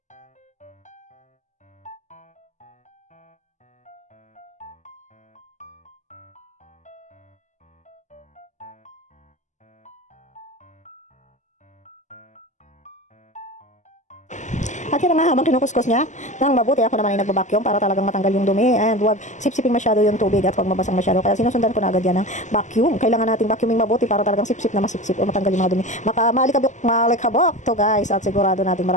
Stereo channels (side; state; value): right; late; 0.35 ms